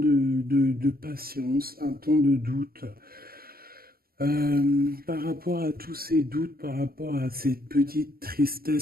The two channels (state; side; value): late; left; 0.44 ms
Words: patience, un temps de doute. Par rapport à tous ces doutes, par rapport à cette petite